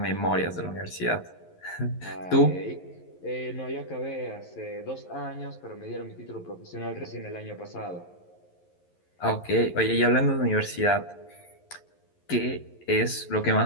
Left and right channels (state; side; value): late; right; 11 ms